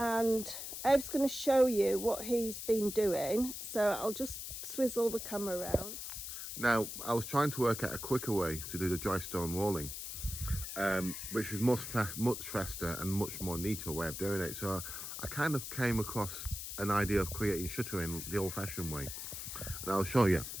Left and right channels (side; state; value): left; noise; hiss, 7 dB below the sound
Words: Abe's going to show you what he's been doing, so I'll just swizzle the camera around. Now, I was trying to work out a quicker way to do the dry stone walling, which is much faster and much more neater way of doing it. So I kind of came across an idea of creating shuttering the old-fashioned way, and I'll show you.